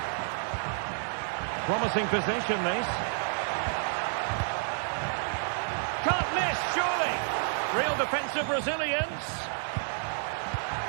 Promising position, this. Can't miss, surely. Real defensive resilience.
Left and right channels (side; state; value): left; silent; 58 dB below the other